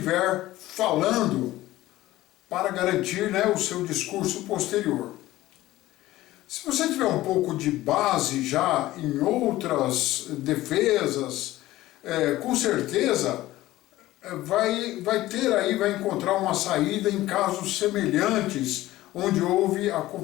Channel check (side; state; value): right; quieter; 16.4 dB